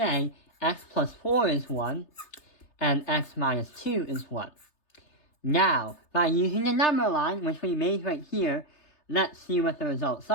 x plus 4 is 1, and x minus 2 is 1. Now, by using the number line, which we made right here, let's see what the results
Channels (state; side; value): late; right; 3.3 ms